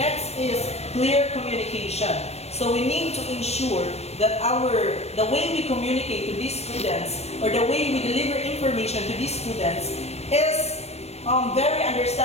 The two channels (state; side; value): late; right; 0.31 ms